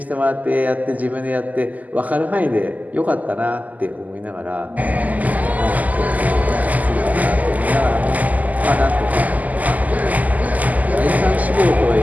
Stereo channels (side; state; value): left; late; 0.079 ms